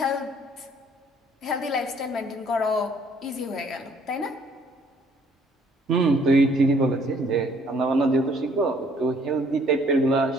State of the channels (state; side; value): normal; both; correlation 0.61